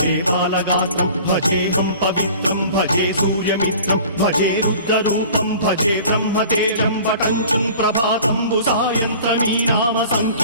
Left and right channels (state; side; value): inverted; both; correlation -0.44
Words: बालगात्रं भजेऽहं पवित्रं भजे सूर्यमित्रं भजे रुद्ररूपं भजे ब्रह्मदेवं वटञ्चुं प्रभाతంబు సాయంత్రమీ నామ